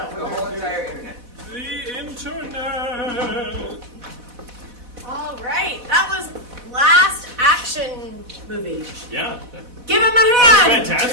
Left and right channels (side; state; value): left; late; 4.1 ms